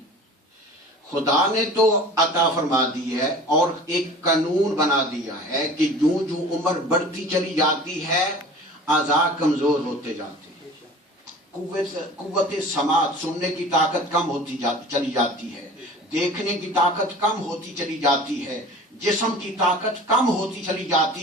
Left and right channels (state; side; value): normal; both; correlation 0.42